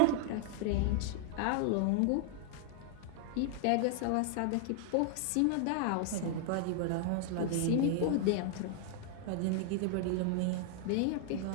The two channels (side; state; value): both; different; correlation 0.00